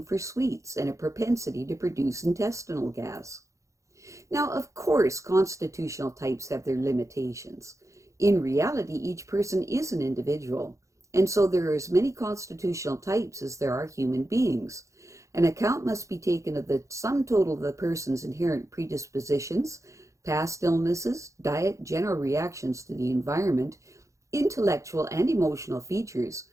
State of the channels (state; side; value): late; left; 0.15 ms